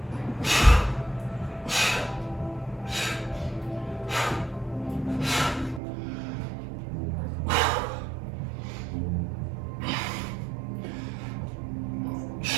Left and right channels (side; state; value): left; drops out; at 5.8 s